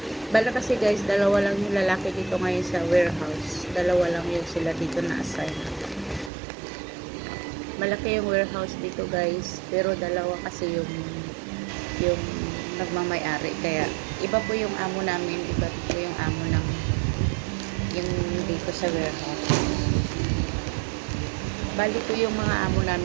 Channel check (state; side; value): drops out; left; at 6.3 s